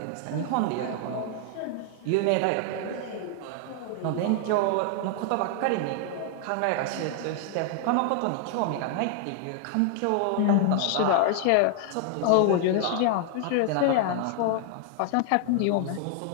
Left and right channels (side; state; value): both; different; correlation 0.00